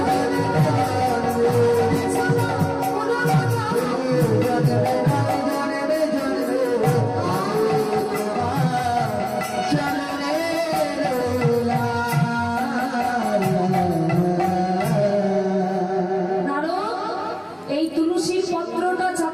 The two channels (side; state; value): both; identical; correlation 1.00